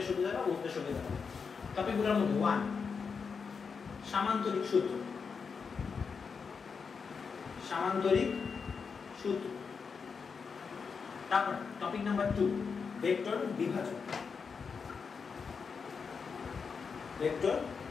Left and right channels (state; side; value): quieter; right; 5.6 dB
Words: সুবিধা হবে, বুঝতে সুবিধা হবে। টপিকগুলোর মধ্যে 1 সামান্তরিক সূত্র। সামান্তরিক সূত্র। তারপর টপিক নাম্বার 2 ভেক্টর বিভাজন। ভেক্টর